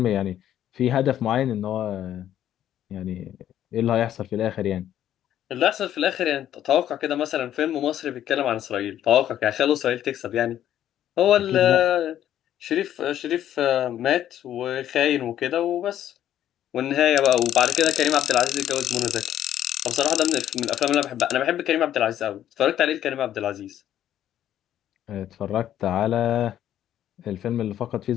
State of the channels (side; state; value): right; quieter; 11.3 dB